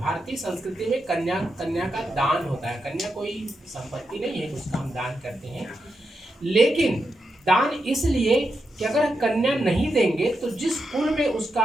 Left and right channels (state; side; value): normal; both; correlation 0.86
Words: संस्कृति में कन्या का दान होता है। कन्या कोई संपत्ति नहीं है, उसका हम दान करते हैं, लेकिन दान इसलिए कि अगर कन्या नहीं देंगे तो जिस कुल में